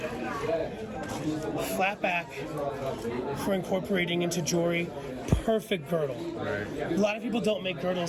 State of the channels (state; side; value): identical; both; correlation 1.00